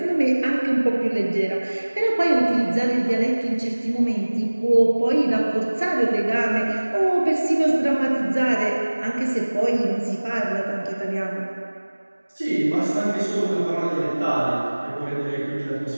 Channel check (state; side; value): inverted; both; correlation -1.00